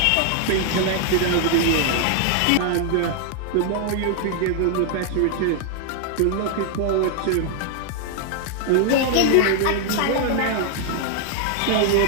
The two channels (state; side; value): different; both; correlation 0.00